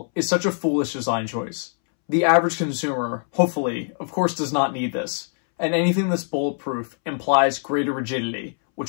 is such a foolish design choice. The average consumer, hopefully, of course does not need this. And anything that's bulletproof implies greater rigidity,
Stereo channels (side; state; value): right; silent; 63 dB below the other